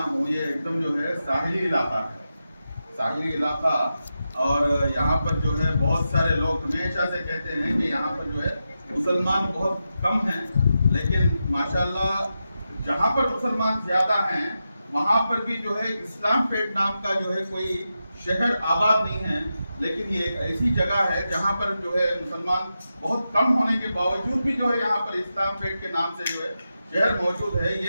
ہوں یہ ایک دم جو ہے ساحلی علاقہ ہے، ساحلی علاقہ، اور یہاں پر جو ہے بہت سارے لوگ ہمیشہ سے کہتے ہیں کہ یہاں پر جو ہے مسلمان بہت کم ہیں، لیکن ماشاءاللہ جہاں پر مسلمان زیادہ ہیں وہاں پر بھی جو ہے اسلام پیٹ نام کا جو ہے کوئی شہر آباد نہیں ہے، لیکن یہ ایک ایسی جگہ ہے جہاں پر جو ہے مسلمان بہت کم ہونے کے باوجود بھی جو ہے یہاں پر اسلام پیٹ کے نام سے جو ہے شہر موجود ہے۔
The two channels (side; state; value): both; inverted; correlation -0.89